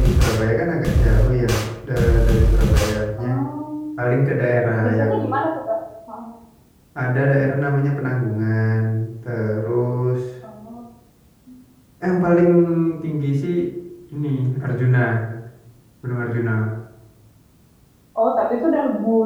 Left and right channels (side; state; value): both; identical; correlation 1.00